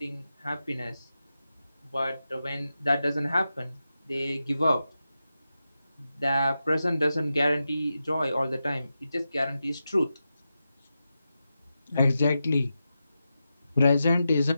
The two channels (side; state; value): both; inverted; correlation -0.90